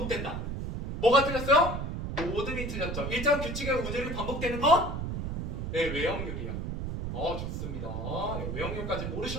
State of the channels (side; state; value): right; noise; rumble, 4 dB below the sound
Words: 뭐가 틀렸어요? 모든이 틀렸죠. 일정한 규칙의 운율이 반복되는 건? 외형률이야. 좋습니다. 외형률까지